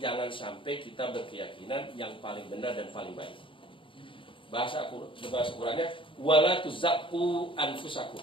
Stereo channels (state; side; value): late; right; 0.25 ms